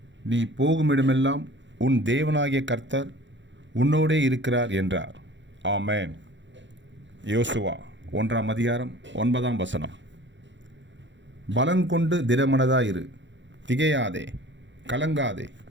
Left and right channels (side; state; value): left; late; 0.53 ms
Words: நீ போகுமிடமெல்லாம் உன் தேவனாகிய கர்த்தர் உன்னோடே இருக்கிறார் என்றார். ஆமென். யோசுவா 1ஆம் அதிகாரம் 9ஆம் வசனம். பலங்கொண்டு திடமனதாயிரு, திகையாதே, கலங்காதே,